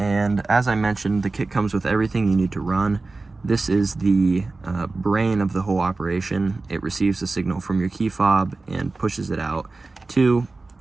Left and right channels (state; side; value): quieter; left; 3.5 dB